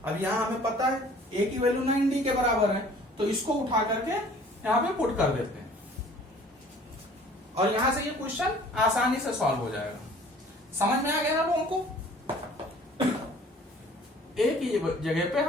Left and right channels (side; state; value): both; normal; correlation 0.51